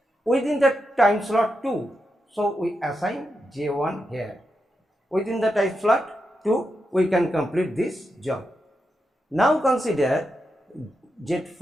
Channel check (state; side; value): normal; both; correlation 0.86